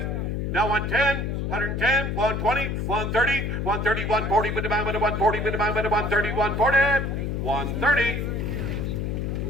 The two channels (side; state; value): left; noise; hum, 1 dB below the sound